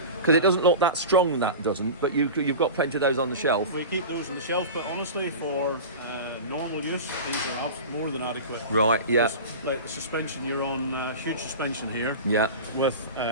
Because it doesn't look that strong, that doesn't, but you've got plenty of those on the shelf. We keep those on the shelf, but honestly, for normal use, these are more than adequate. Right, yeah. Like the suspension, you're on huge suspension here. Yeah. With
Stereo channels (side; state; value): both; inverted; correlation -0.30